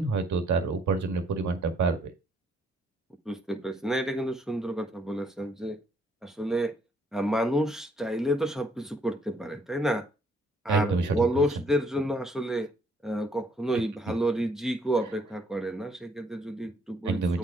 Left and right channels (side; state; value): both; normal; correlation 0.66